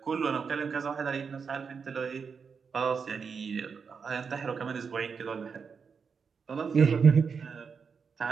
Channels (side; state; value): left; quieter; 5.8 dB